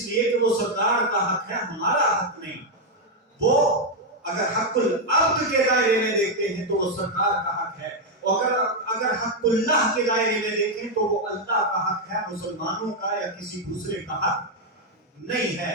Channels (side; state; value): both; normal; correlation 0.01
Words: لیے کہ وہ سرکار کا حق ہے، ہمارا حق نہیں۔ وہ اگر حق العبد کے دائرے میں دیکھتے ہیں تو وہ سرکار کا حق ہے، اور اگر حق اللہ کے دائرے میں دیکھیں تو وہ اللہ کا حق ہے، مسلمانوں کا یا کسی دوسرے کا حق نہیں ہے۔